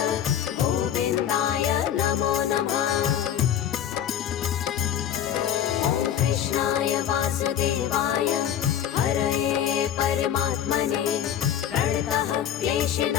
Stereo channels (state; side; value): quieter; right; 10.0 dB